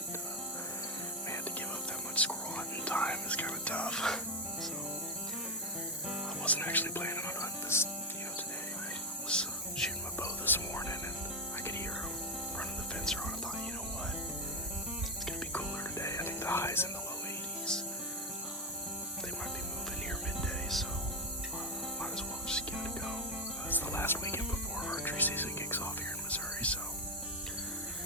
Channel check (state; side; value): normal; both; correlation 0.07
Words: man, to give up that much squirrel hunting time is kind of tough. So I wasn't actually planning on hunting this, today. I was shooting my bow this morning, and I could hear them running the fence around. I thought, you know what, it's gonna be cooler today. I think the high's in the low 80s. They might be moving here midday, so might as well just give it a go. It's the last weekend before archery season kicks off here in Missouri, so